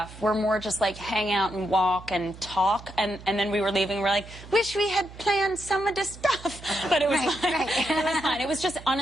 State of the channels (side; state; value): right; noise; hum, 17 dB below the sound